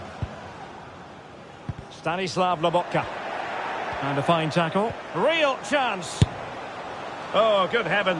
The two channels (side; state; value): both; identical; correlation 1.00